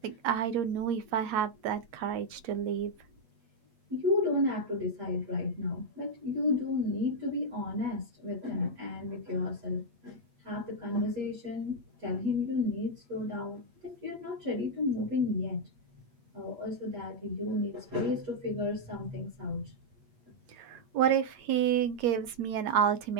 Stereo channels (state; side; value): late; left; 8.5 ms